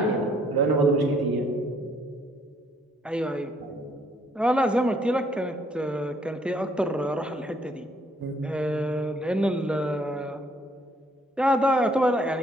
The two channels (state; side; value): normal; both; correlation 0.66